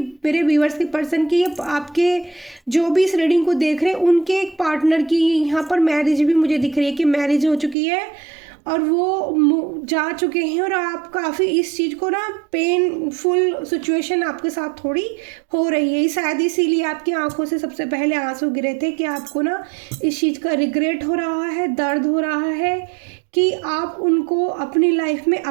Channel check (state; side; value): drops out; left; at 7.8 s